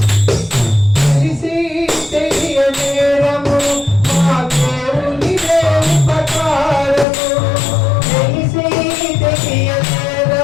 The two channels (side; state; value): right; drops out; at 7.1 s